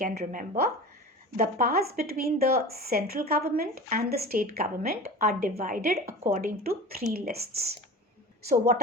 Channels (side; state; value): both; normal; correlation 0.34